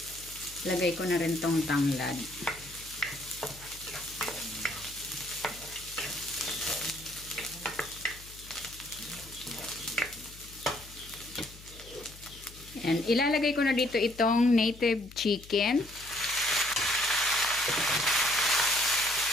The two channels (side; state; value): left; noise; hum, 19 dB below the sound